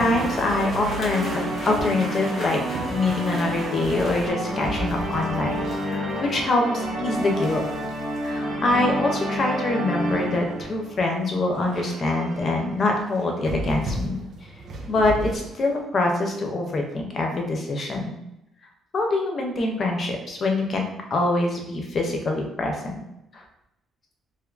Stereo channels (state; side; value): normal; both; correlation 0.74